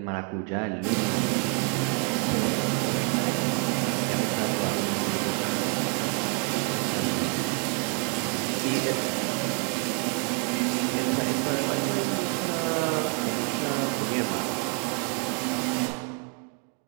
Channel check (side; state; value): left; quieter; 37.3 dB